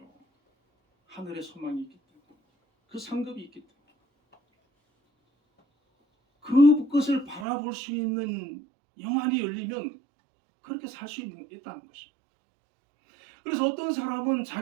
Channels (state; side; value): drops out; left; at 7.5 s